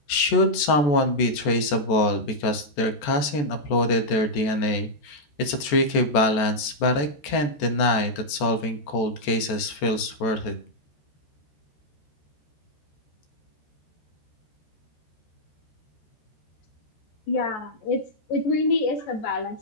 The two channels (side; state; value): right; late; 14 ms